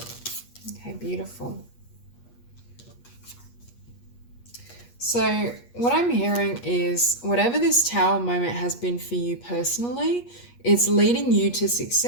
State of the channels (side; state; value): right; late; 8.4 ms